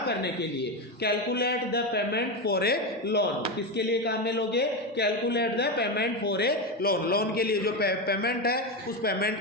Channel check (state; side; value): normal; both; correlation 0.14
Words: करने के लिए। Calculate the payment for a loan, किसके लिए काम में लोगे, calculate the payment for a loan. Loan के लिए जो पेमेंट है उस